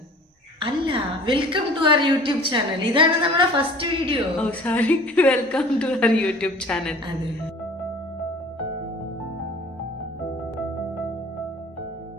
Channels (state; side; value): normal; both; correlation 0.47